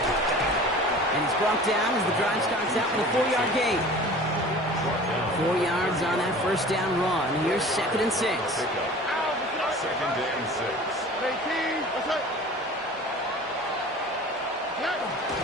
And he's brought down as the drive starts out with a 4-yard gain. 4 yards on that first down run. Here's second and 6. Second and 6.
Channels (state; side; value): normal; both; correlation 0.42